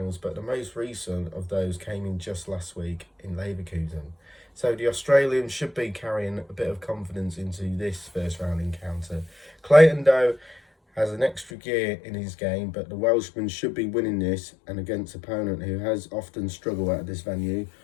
but the most recent of those came in just last week in Leverkusen. So the Australian should be carrying a bit of confidence into this first round encounter. Clayton, though, has an extra gear in his game, but the Welshman should be winning this and against an opponent who has often struggled at this venue.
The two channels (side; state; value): right; drops out; at 11.5 s